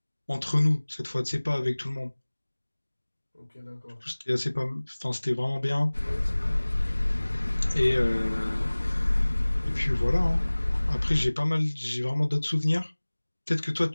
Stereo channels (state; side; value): inverted; both; correlation -1.00